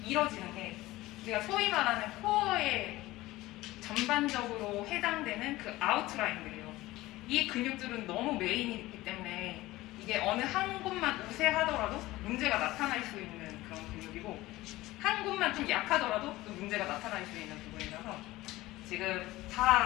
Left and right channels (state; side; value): quieter; right; 18.0 dB